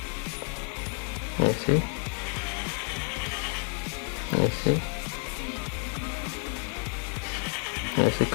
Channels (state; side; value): quieter; right; 37.5 dB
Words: ऐसे ऐसे ऐसे